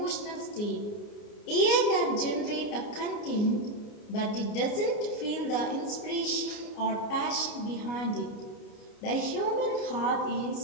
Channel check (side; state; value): right; late; 29 ms